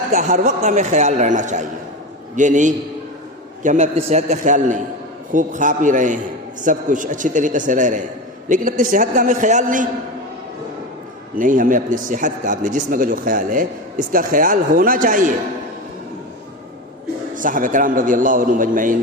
کا ہر وقت ہمیں خیال رہنا چاہیے. یہ نہیں کہ ہمیں اپنی صحت کا خیال نہیں، خوب کھا پی رہے ہیں، سب کچھ اچھی طریقے سے رہ رہے ہیں، لیکن اپنی صحت کا ہمیں خیال نہیں. ہمیں اپنی صحت کا، اپنے جسم کا جو خیال ہے اس کا خیال ہونا چاہیے. صحابہ کرام رضی اللہ عنہم اجمعین،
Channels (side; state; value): both; normal; correlation 0.22